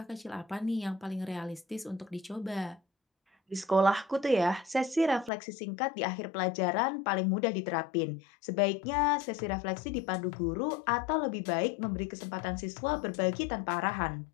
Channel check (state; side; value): drops out; right; at 5.3 s